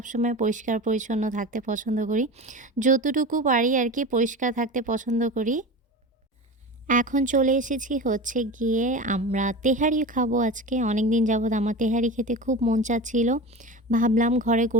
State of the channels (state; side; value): normal; both; correlation 0.29